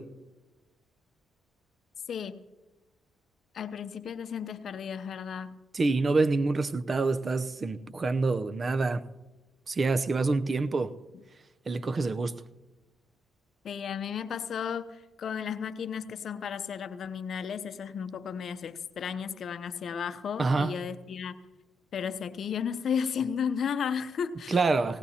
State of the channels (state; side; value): normal; both; correlation 0.83